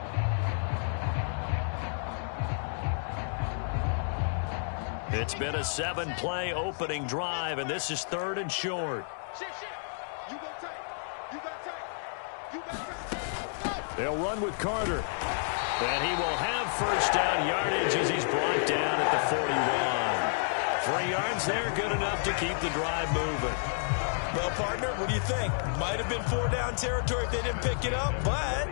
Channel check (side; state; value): right; silent; digital silence